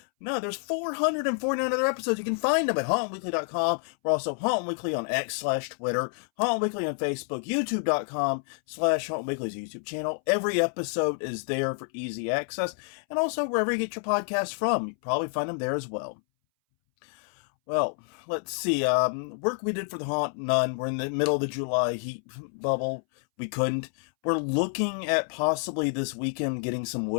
there's 449 other episodes. You can find them at hauntweekly.com. We're also Haunt Weekly on X/Twitter, Haunt Weekly on Facebook, youtube.com/Haunt Weekly's YouTube channel. Every episode is there for easy access. And also wherever you get your podcasts from, you probably find them there as well. Well, let's see. Work we did for the haunt, none. We're in the middle of the July heat bubble. We couldn't. We're looking at possibly this weekend getting some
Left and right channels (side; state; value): right; silent; 59 dB below the other